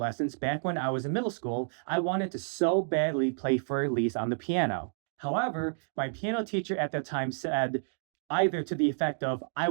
back when I was in middle school, I wanted to so badly play Für Elise on the piano. However, my piano teacher at that time said either to the effect of I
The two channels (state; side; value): silent; left; digital silence